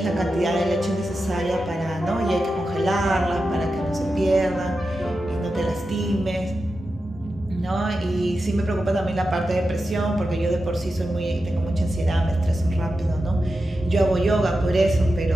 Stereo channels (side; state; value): both; normal; correlation 0.90